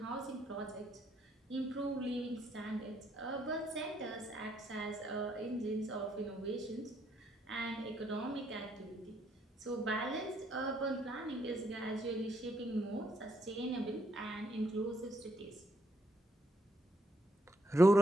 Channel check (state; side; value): normal; both; correlation 0.73